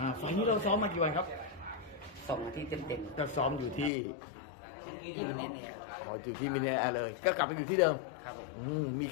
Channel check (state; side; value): drops out; right; at 3.9 s